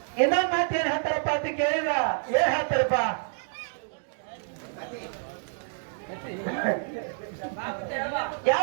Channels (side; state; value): left; silent; digital silence